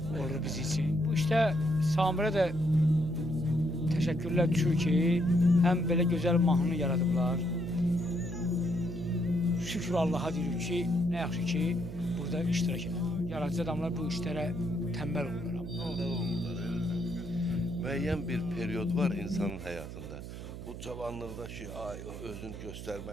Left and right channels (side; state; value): right; noise; hum, 10 dB below the sound